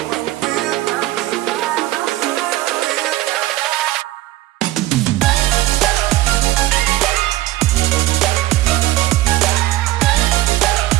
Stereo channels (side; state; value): left; quieter; 16.0 dB